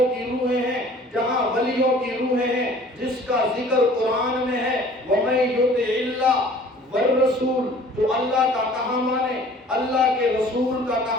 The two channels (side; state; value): both; normal; correlation 0.50